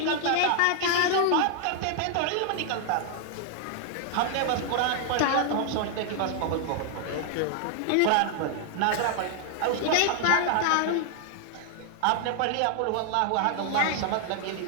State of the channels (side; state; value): both; different; correlation 0.00